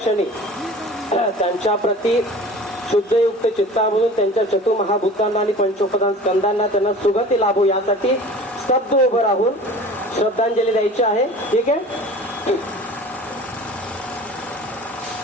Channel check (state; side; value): normal; both; correlation 0.41